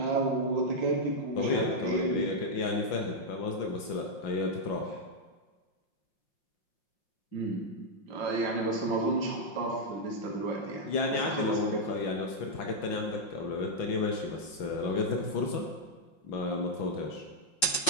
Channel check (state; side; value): late; right; 5.6 ms